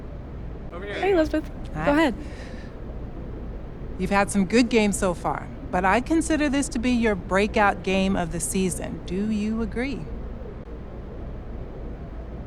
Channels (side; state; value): both; identical; correlation 1.00